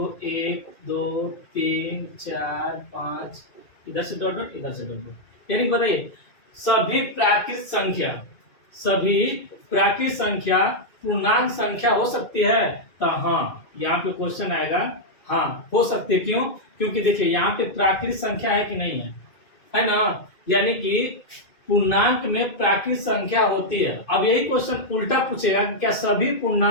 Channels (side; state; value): right; late; 2.3 ms